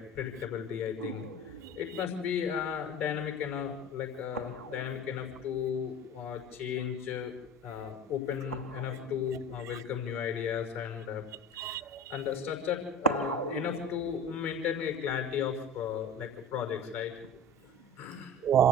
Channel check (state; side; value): normal; both; correlation 0.35